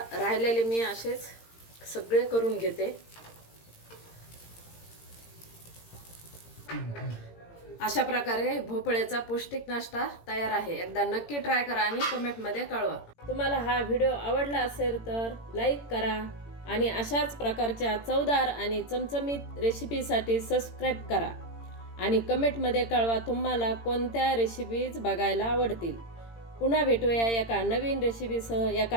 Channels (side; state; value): right; late; 17 ms